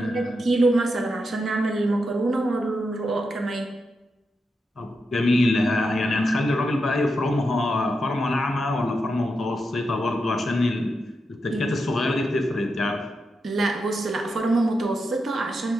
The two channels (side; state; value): both; normal; correlation 0.86